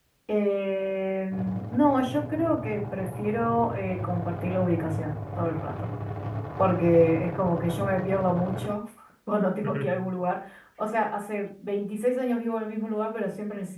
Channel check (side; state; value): both; identical; correlation 1.00